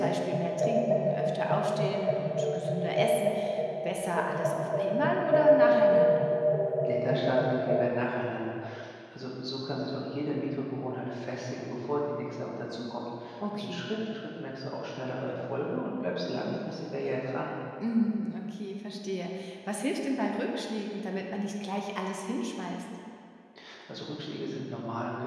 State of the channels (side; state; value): both; identical; correlation 1.00